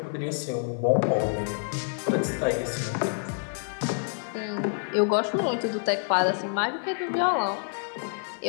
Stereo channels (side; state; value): right; silent; digital silence